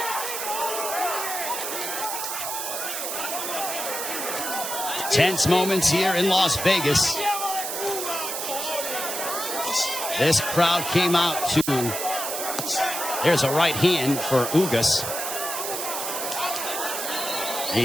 Tense moments here in Las Vegas. This crowd came out to... There's a right hand for Ugas.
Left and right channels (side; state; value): right; noise; hiss, 4 dB below the sound